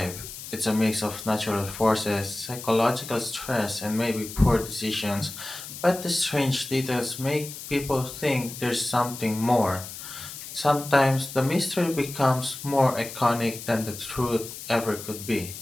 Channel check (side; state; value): left; noise; hiss, 11 dB below the sound